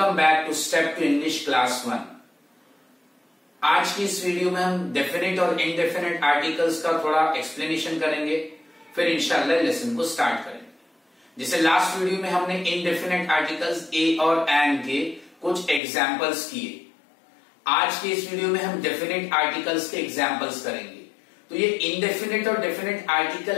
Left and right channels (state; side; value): drops out; right; at 15.8 s